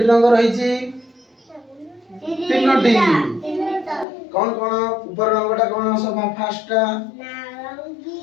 রঙ রহিছি তিনটি কোন কোন উপর রঙটা কোন সব ফার্স্টটা নারঙ্গী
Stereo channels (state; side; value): drops out; right; at 4.0 s